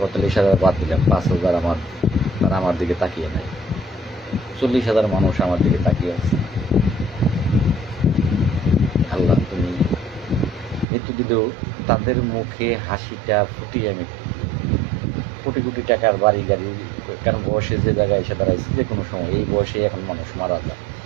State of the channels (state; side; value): drops out; left; at 10.9 s